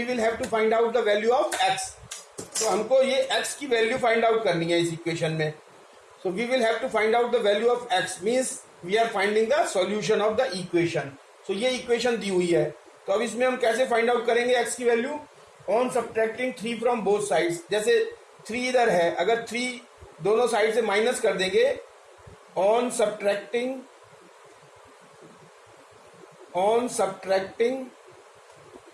will have to find out the value of x. तो हमको ये x की वैल्यू फाइंड आउट करनी है इस इक्वेशन में. So we will have to find out the value of x, means we are finding the solution of the equation. So ये इक्वेशन दी हुई है, तो अब इसमें हम कैसे फाइंड आउट करेंगे एक्स की value? On subtracting 3 from both sides. जैसे 3 इधर है, अगर 3 दोनों साइड से माइनस कर देंगे, on subtracting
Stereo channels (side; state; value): both; identical; correlation 1.00